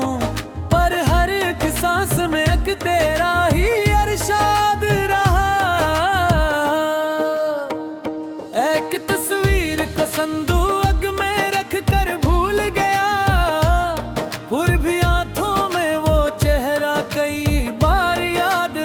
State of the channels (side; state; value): both; identical; correlation 1.00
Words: पर हर एक सांस में एक तेरा ही अरशाद रहा। एक तस्वीर को संदूक में रख कर भूल गया, फिर भी आंखों में वो चेहरा कई बार याद